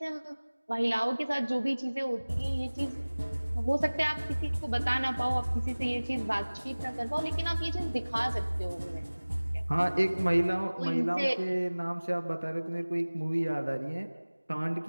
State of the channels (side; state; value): both; inverted; correlation -1.00